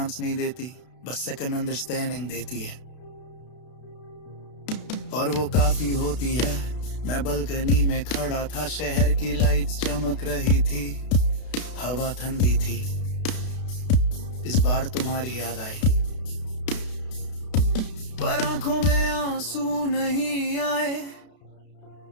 नहीं देती, बस सेकंड अंडरस्टैंडिंग देती है, और वो काफी होती है। मैं बालकनी में खड़ा था, शहर की लाइट्स चमक रही थी, हवा ठंडी थी। इस बार तुम्हारी याद आई, पर आंखों में आंसू नहीं आए,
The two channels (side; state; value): right; late; 32 ms